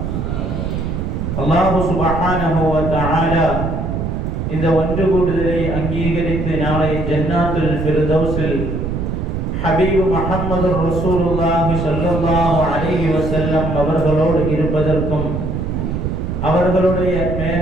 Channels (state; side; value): noise; right; rumble, 2 dB below the sound